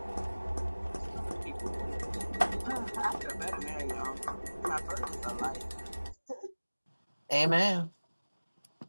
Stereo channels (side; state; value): both; inverted; correlation -1.00